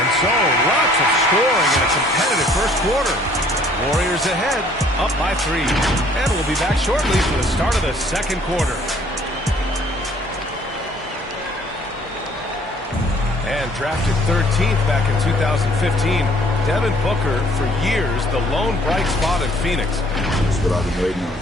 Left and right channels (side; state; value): both; normal; correlation 0.58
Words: so, lots of scoring in a competitive first quarter. Warriors ahead, up by 3. And we'll be back shortly for the start of the second quarter. And drafted 13th back in 2015, Devin Booker, for years, the lone bright spot in Phoenix. That's what I've been waiting on.